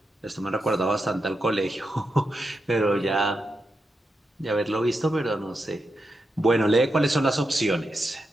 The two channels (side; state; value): both; normal; correlation 0.87